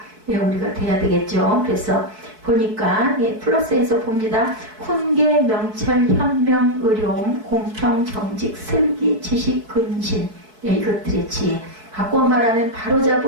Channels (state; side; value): late; left; 4.6 ms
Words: 우리가 돼야 되겠죠. 그래서 보니까 플러스에서 봅니다. 훈계, 명철, 현명, 의로움, 공평, 정직, 슬기, 지식, 근신 이것들의 지혜. 바꿔 말하면